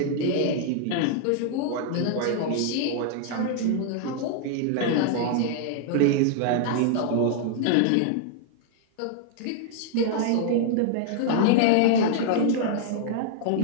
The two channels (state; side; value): different; both; correlation -0.01